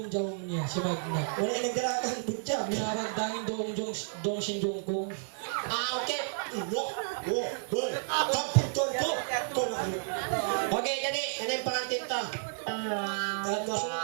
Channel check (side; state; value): left; silent; 57 dB below the other